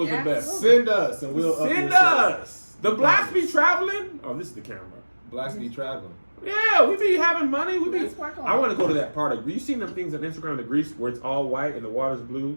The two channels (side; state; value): both; inverted; correlation -1.00